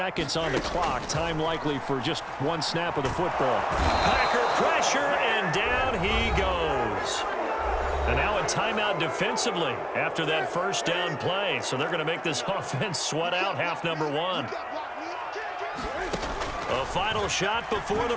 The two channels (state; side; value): identical; both; correlation 1.00